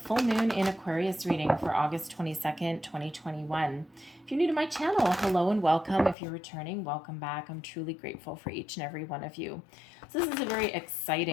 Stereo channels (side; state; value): right; drops out; at 6.2 s